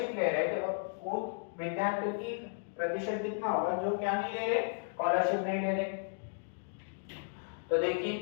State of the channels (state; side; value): silent; right; digital silence